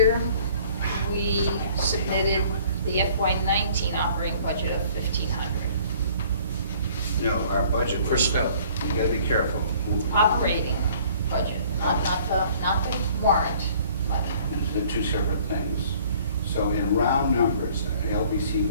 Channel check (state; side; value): inverted; both; correlation -0.55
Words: we submitted the FY19 operating budget of 1,500. No, our budget. For snow. You gotta be careful. Operating budget, not the warrant money. They're two separate things. So in round numbers, the LBC